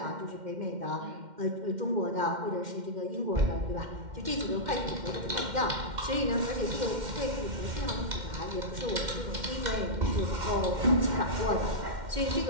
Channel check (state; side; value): late; left; 2.1 ms